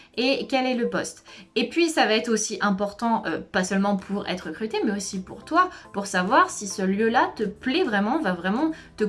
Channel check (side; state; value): both; identical; correlation 1.00